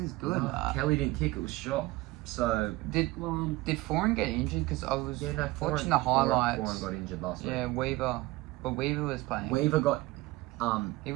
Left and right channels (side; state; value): left; quieter; 20.0 dB